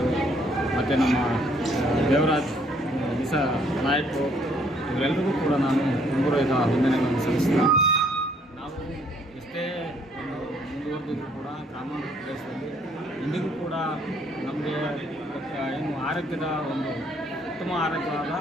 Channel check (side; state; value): both; normal; correlation 0.65